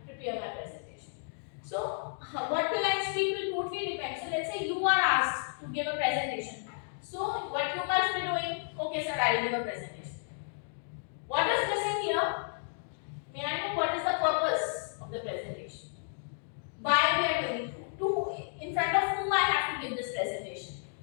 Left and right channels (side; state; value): right; silent; digital silence